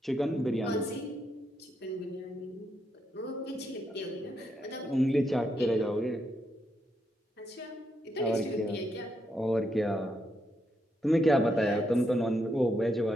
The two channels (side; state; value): both; normal; correlation 0.79